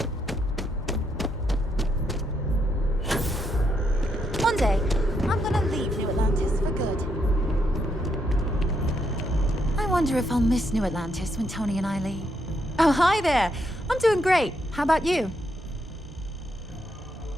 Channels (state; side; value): normal; both; correlation 0.78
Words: One day, I'm gonna leave New Atlantis for good. I wonder if I'll miss New Atlantis when Tony and I leave. hi there. I'm doing great. How about you?